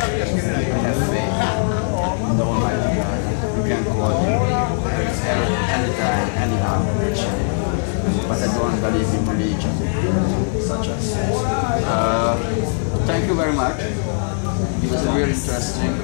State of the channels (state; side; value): silent; right; digital silence